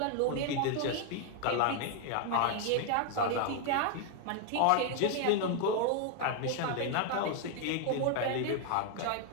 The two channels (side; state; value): both; different; correlation 0.00